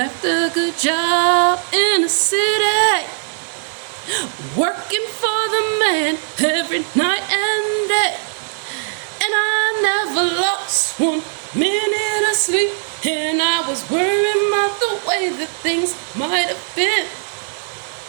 a good job in the city, working for the man every night and day. And I never lost 1 minute of sleep, and I was worrying about the way that things might have been.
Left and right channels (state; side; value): silent; left; digital silence